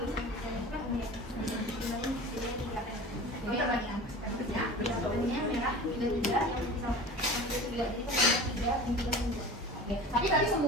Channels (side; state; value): both; normal; correlation 0.37